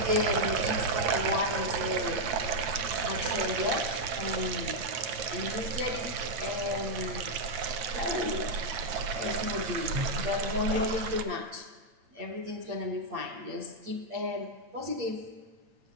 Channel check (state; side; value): late; left; 8.7 ms